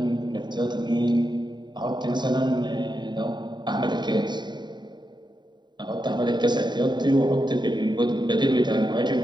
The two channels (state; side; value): late; left; 0.21 ms